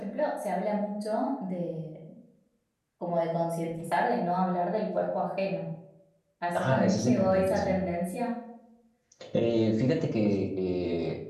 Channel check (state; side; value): identical; both; correlation 1.00